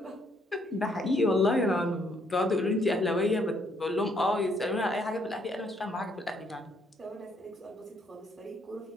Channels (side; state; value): both; normal; correlation 0.69